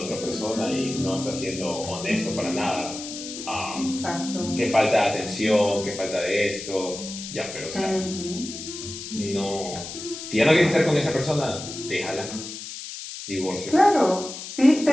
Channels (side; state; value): left; noise; hiss, 10 dB below the sound